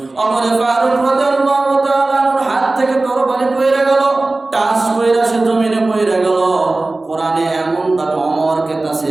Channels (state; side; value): quieter; left; 3.1 dB